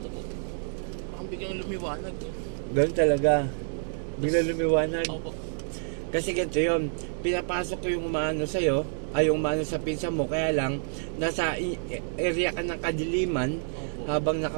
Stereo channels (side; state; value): left; silent; 59 dB below the other